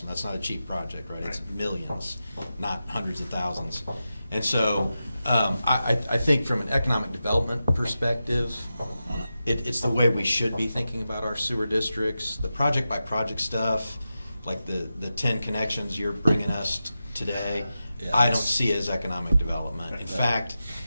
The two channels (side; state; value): both; inverted; correlation -0.91